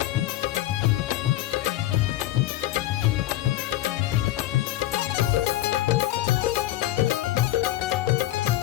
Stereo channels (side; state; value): right; quieter; 15.1 dB